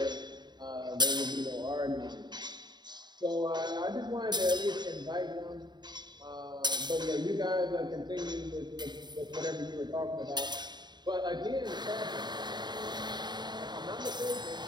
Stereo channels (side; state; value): left; late; 0.21 ms